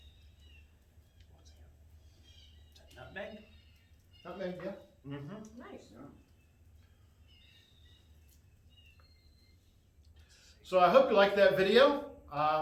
What's that? Is that nutmeg? Nutmeg, yeah. Mm-hmm. Nice. Yeah. So I hope you liked that video.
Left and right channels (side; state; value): both; identical; correlation 1.00